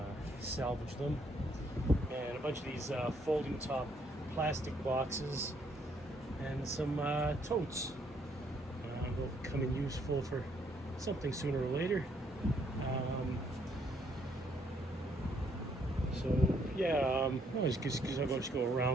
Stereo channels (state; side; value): normal; both; correlation 0.70